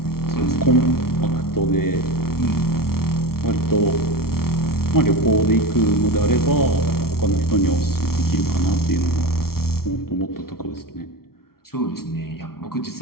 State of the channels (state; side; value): late; right; 0.94 ms